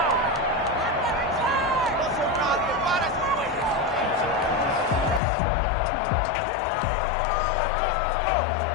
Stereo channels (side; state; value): right; drops out; at 5.2 s